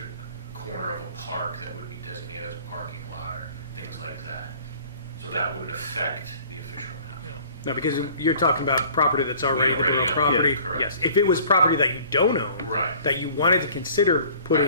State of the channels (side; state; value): both; inverted; correlation -0.50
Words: corner of a park that would be designated as a parking lot or things like that. So that wouldn't affect the official map. No, because you're talking about property that's already the borough own. property. Yeah, correct. Yes. If it was property that you don't own, Right. that you wanted to consider